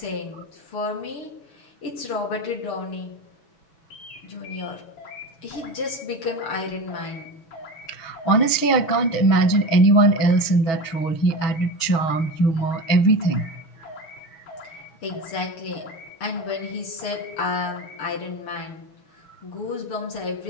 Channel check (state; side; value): late; right; 6.2 ms